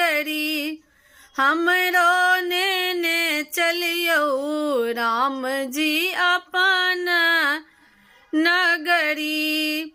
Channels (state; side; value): identical; both; correlation 1.00